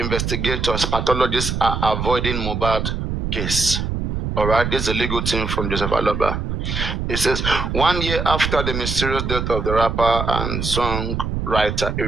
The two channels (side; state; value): right; noise; rumble, 2 dB below the sound